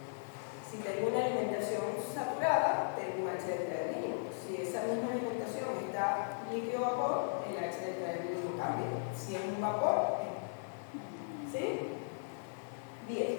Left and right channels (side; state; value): right; silent; digital silence